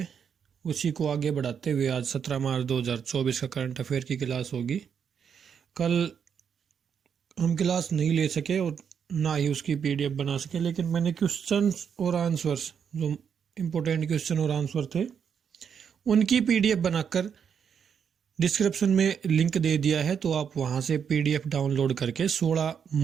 उसी को आगे बढ़ाते हुए आज 17 मार्च 2024 का करंट अफेयर की क्लास होगी। कल हम क्लास नहीं ले सके और ना ही उसकी पीडीएफ बना सके, लेकिन मैंने क्वेश्चंस और आंसर्स, जो इम्पोर्टेंट क्वेश्चन और आंसर थे, उनकी पीडीएफ बनाकर डिस्क्रिप्शन में लिंक दे दिया है, तो आप वहां से पीडीएफ डाउनलोड करके 16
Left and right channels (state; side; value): quieter; left; 7.4 dB